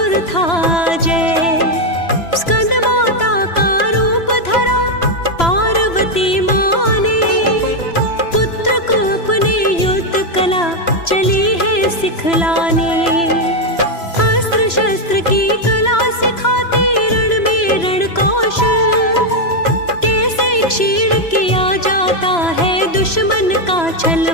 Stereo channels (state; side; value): late; right; 3.0 ms